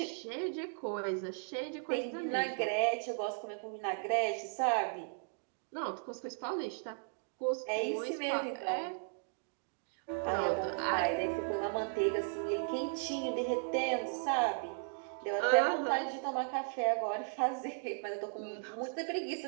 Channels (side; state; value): left; silent; digital silence